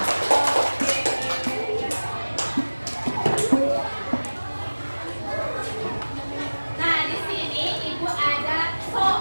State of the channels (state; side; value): inverted; both; correlation -1.00